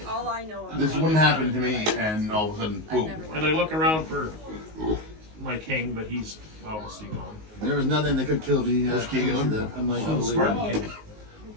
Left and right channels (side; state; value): left; late; 19 ms